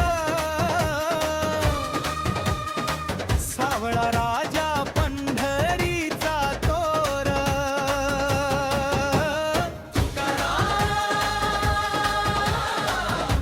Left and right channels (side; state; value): both; identical; correlation 1.00